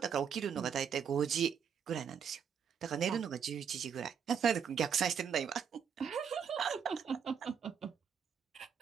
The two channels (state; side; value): quieter; left; 7.3 dB